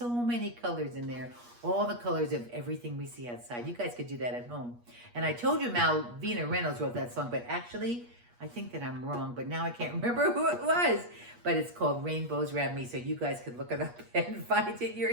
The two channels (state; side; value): late; left; 8.4 ms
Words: many colors in there, all the colors of everything we see outside. You guys could do that at home. And I told you Malvina Reynolds wrote that song, but actually, I think that I'm wrong, but now I can't remember who it was. But it's called Rainbows Around Me, so you guys could look it up and find it